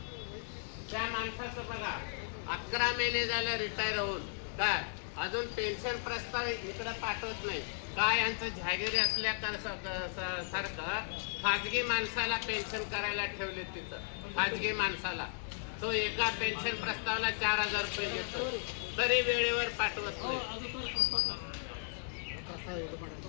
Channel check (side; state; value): right; silent; digital silence